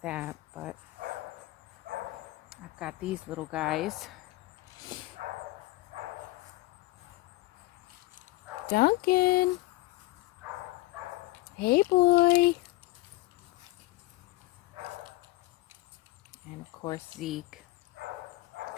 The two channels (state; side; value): quieter; right; 19.4 dB